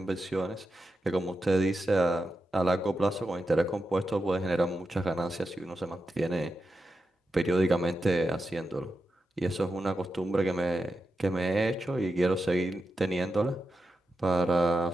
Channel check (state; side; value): normal; both; correlation 0.89